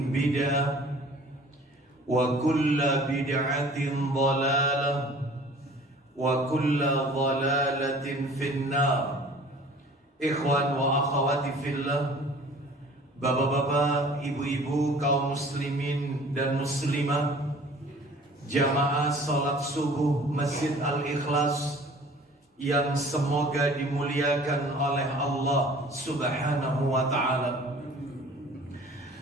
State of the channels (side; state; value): both; normal; correlation 0.48